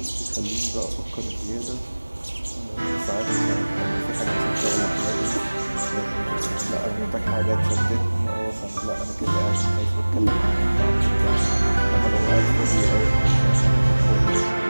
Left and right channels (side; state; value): both; inverted; correlation -1.00